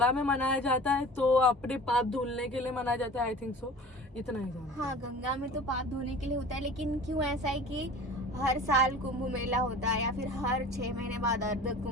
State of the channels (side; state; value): both; normal; correlation 0.40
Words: में मनाया जाता है, तो अपने पाप धुलने के लिए मनाया जाता है, आई थिंक सो, इतना ही जानती हूँ। हाँ, गंगा में तो पाप धोने के लिए होता है, लेकिन क्यों ऐसा है कि हर साल कुंभ मेला होता है, या फिर हर 6 महीने बाद अर्ध